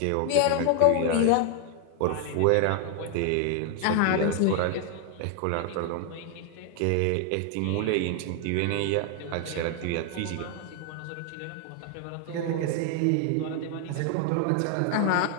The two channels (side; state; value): both; different; correlation 0.00